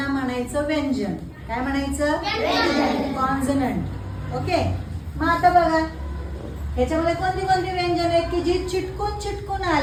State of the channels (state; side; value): identical; both; correlation 1.00